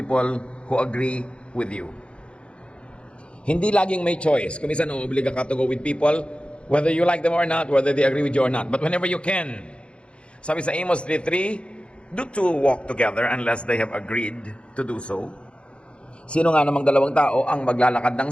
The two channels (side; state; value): right; late; 0.058 ms